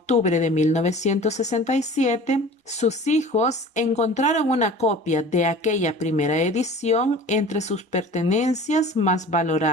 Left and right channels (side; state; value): both; normal; correlation 0.42